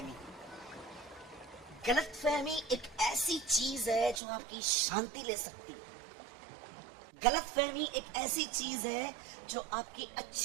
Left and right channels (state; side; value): drops out; left; at 4.2 s